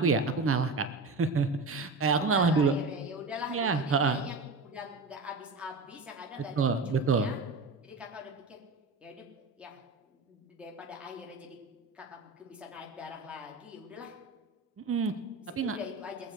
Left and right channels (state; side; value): quieter; left; 3.6 dB